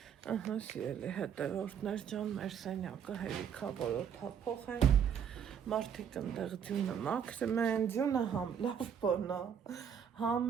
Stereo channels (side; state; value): left; quieter; 7.9 dB